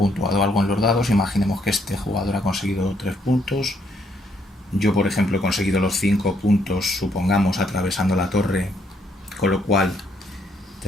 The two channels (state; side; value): normal; both; correlation 0.71